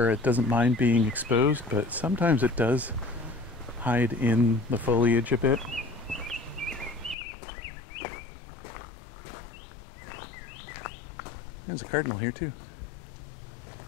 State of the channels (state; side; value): drops out; right; at 7.2 s